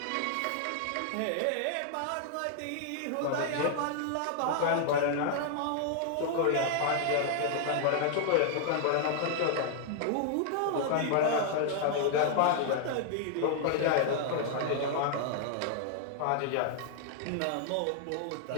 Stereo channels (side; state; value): both; different; correlation -0.01